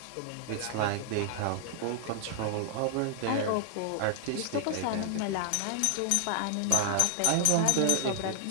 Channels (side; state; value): both; different; correlation -0.01